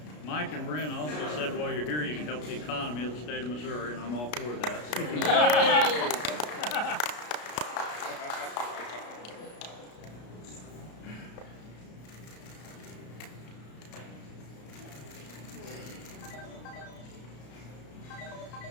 Mike and Brent also said while you're here, you can help the economy of the state of Missouri, and I'm all for that.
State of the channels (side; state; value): right; late; 33 ms